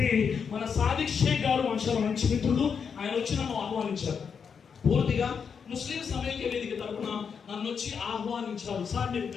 మన సాదిక్ షేక్ గారు మంచి మిత్రుడు, ఆయన వచ్చి నన్ను ఆహ్వానించారు. పూర్తిగా ముస్లిం సమైక్య వేదిక తరఫున నన్ను వచ్చి ఆహ్వానించారు. సార్ మీరు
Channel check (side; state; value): right; quieter; 6.5 dB